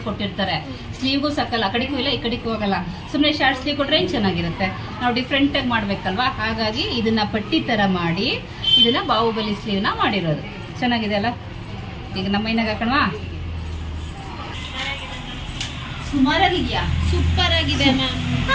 ಕೊಟ್ಟಿರ್ತಾರೆ. ಸ್ಲೀವ್ಗೂ ಸಾಕಲ್ಲ, ಆ ಕಡೆಗೂ ಇಲ್ಲ ಈ ಕಡೆಗೂ ಹೋಗಲ್ಲ. ಸುಮ್ಮನೆ ಶಾರ್ಟ್ ಸ್ಲೀವ್ ಕೊಟ್ರೆ ಏನ್ ಚೆನ್ನಾಗಿರುತ್ತೆ. ನಾವು ಡಿಫ್ರೆಂಟ್ ಆಗಿ ಮಾಡ್ಬೇಕಲ್ವಾ, ಹಾಗಾಗಿ ಇದನ್ನ ಪಟ್ಟಿ ತರ ಮಾಡಿ ಇದನ್ನ ಬಾಹುಬಲಿ ಸ್ಲೀವ್ ನ ಮಾಡಿರೋದು. ಚೆನ್ನಾಗಿದೆ ಅಲ್ಲ. ಈಗ ನಮ್ಮ ಮೈನಾಗ ಹಾಕೋಣವಾ. ಸುಮಾರಾಗಿದ್ಯಾ? ಸೂಪರ್ ಆಗಿದೆ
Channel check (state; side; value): identical; both; correlation 1.00